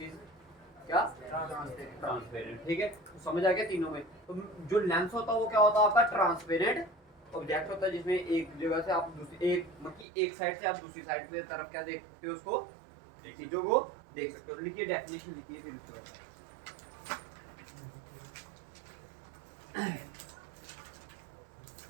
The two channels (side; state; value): left; drops out; at 10.1 s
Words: इज क्या, ट्रांसपेरेंट, ठीक है। तो समझ आ गया तीनों में। तो जो लेंस होता है वो क्या होता है आपका, ट्रांसपेरेंट ऑब्जेक्ट होता है, जिसमें एक जगह से आप दूसरी, एक मतलब एक साइड से आप दूसरी साइड की तरफ क्या देख सकते हो, उसको चीजों को देख सकते हो। लिखिए डेफिनेशन, लिखिए फिर उसके बाद।